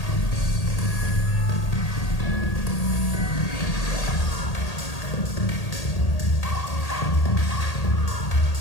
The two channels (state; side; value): late; right; 1.8 ms